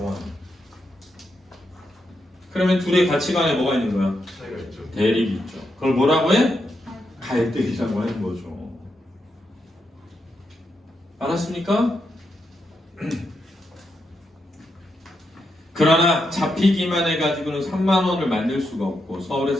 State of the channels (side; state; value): both; normal; correlation 0.83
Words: 그러면 둘의 가치관에 뭐가 있는 거야? 차이가 있죠. 대립이 있죠. 그걸 뭐라고 해? 갈등이라고 하는 거죠. 알았습니까? 그러나 잡히기만 해가지고는 3만 원을 만들 수가 없고